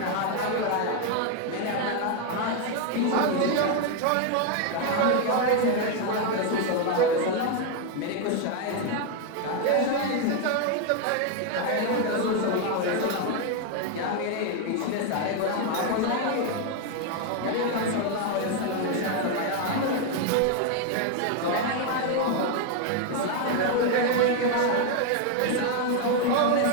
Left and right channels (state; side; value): different; both; correlation 0.01